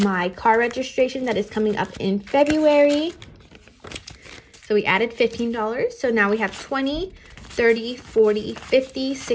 car registration that is coming up in February. So we added $15. So now we have 20, 30, 40, 50,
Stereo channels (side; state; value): both; identical; correlation 1.00